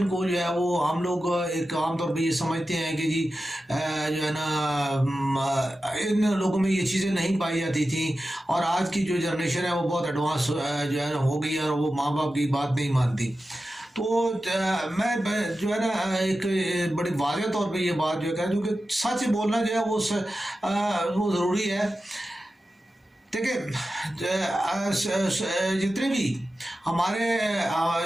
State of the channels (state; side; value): normal; both; correlation 0.93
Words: کو جو ہے وہ ہم لوگ ایک عام طور پہ یہ سمجھتے ہیں کہ جی جو ہے نا ان لوگوں میں یہ چیزیں نہیں پائی جاتی تھیں، اور آج کی جو جنریشن ہے وہ بہت ایڈوانس جو ہے ہو گئی ہے، اور وہ ماں باپ کی بات نہیں مانتی۔ تو میں جو ہے نا ایک بڑی واضح طور پہ یہ بات جو ہے کہہ دوں کہ سچ بولنا جو ہے وہ ضروری ہے۔ دیکھیں، جتنے بھی ہمارے